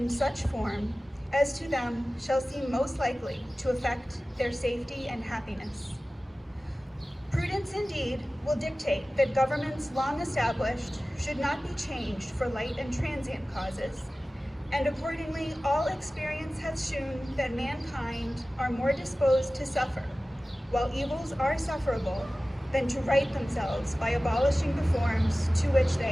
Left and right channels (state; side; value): normal; both; correlation 0.96